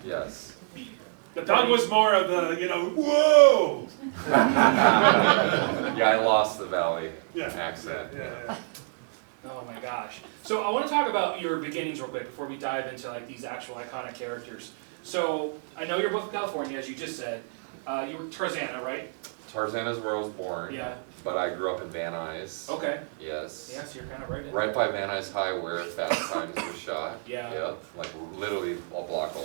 Yes. Doug was more of the, whoa. Yeah, I lost the Valley accent. Yeah. Oh my gosh. So I want to talk about your beginnings real quick before we dive into like these actual iconic characters. So I know you're both from California, as you just said. You were Tarzana, right? Tarzana is where I was born. Yeah. But I grew up in Van Nuys. Okay. Yes. Yeah, so you're kind of right in Right by Van Nuys High where Fast Times was shot. Yeah. Yep. Like literally a block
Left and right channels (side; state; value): left; silent; digital silence